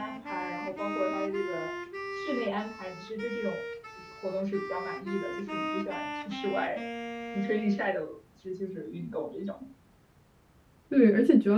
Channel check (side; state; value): both; identical; correlation 1.00